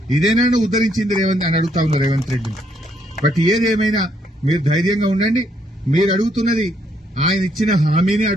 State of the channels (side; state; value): both; normal; correlation 0.72